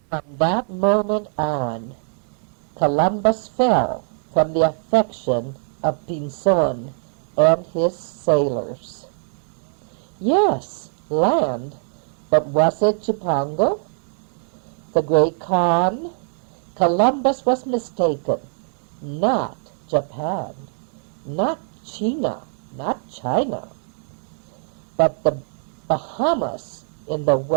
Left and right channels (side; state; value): left; silent; digital silence